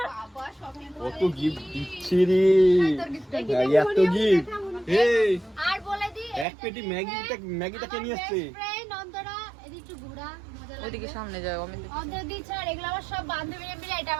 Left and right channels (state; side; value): drops out; left; at 6.5 s